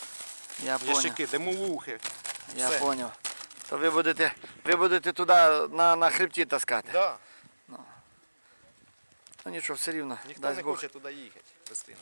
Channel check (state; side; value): inverted; both; correlation -1.00